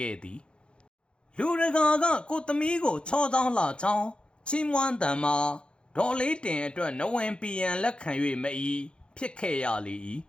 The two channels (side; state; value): right; late; 0.055 ms